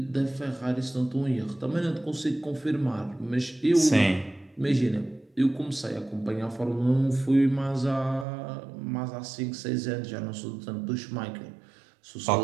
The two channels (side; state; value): left; drops out; at 8.2 s